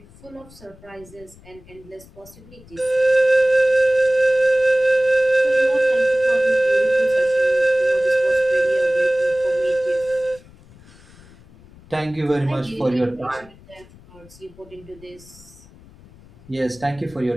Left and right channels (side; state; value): left; noise; rumble, 24 dB below the sound